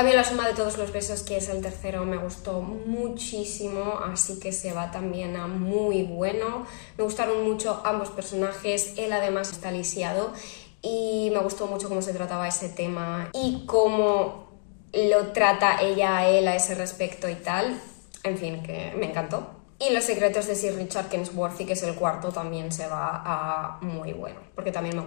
La suma de todos los besos, que es el tercero, me gustó muchísimo, así que se va también a muy bueno. Me gustaron mucho ambos personajes, él además está lisiado y me gustó mucho cómo se trataba ese tema y cómo lo trata ella a él a ese respecto y tal. En fin, que me encantó. Y Los secretos de Sir Richard Kensworthy, que es el cuarto, también se va a muy bueno, porque también me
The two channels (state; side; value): silent; right; 58 dB below the other